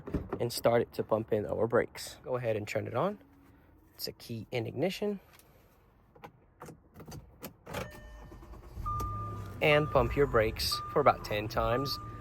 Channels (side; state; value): both; identical; correlation 1.00